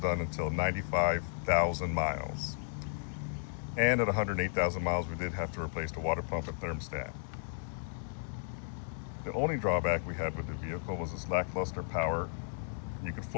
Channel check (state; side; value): silent; right; digital silence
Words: done until 95,000 miles. And at 108,000 miles, we did have to replace the water pump and thermostat. The only drawback we had with the vehicle was its lackluster power. You could